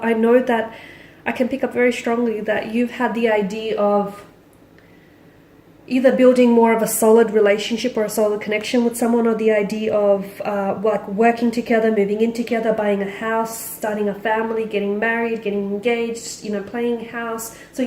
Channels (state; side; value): identical; both; correlation 1.00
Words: I know that I can pick up very strongly that you've had the idea of either building more of a solid relationship or a solid connection with someone, or the idea of working together, moving in together, buying a house, starting a family, getting married, getting engaged, playing house. So